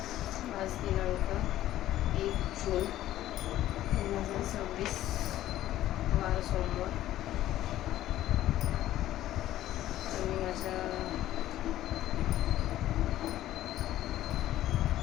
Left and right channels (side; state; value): right; quieter; 13.7 dB